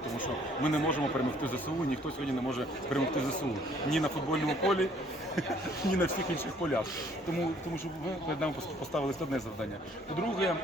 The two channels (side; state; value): both; normal; correlation 0.60